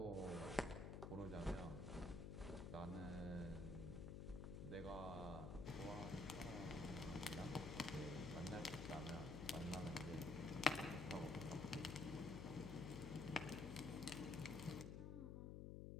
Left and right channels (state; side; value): noise; left; hum, 5 dB below the sound